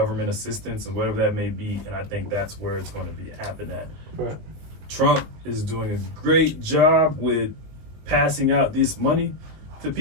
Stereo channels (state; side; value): late; left; 20 ms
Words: assistance and whatever that may be. And I think that's where it's going to be happen at. Right. Trump is doing a great job with passing out this money to